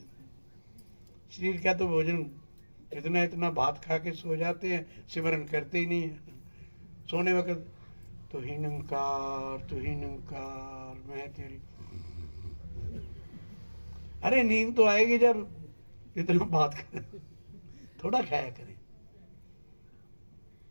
शरीर का तो भोजन इतना इतना भात खा के सो जाते हैं, सिमरन करते ही नहीं है। सोने वक्त तू ही निरंकार, तू ही निरंकार, मैं तेरी। अरे नींद तो आएगी जब इतना बात करें, थोड़ा खाया करें।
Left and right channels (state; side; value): inverted; both; correlation -1.00